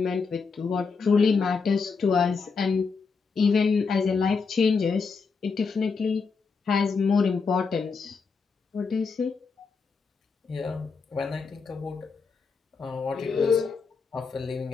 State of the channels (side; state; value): right; quieter; 5.0 dB